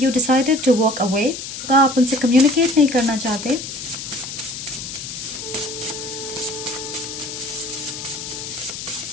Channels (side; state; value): left; noise; hiss, 8 dB below the sound